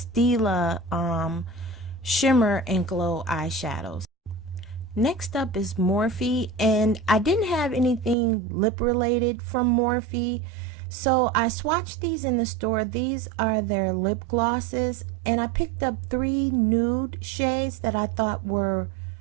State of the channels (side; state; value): left; drops out; at 8.2 s